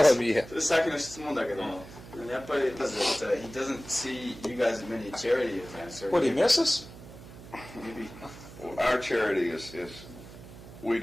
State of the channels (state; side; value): noise; right; hum, 16 dB below the sound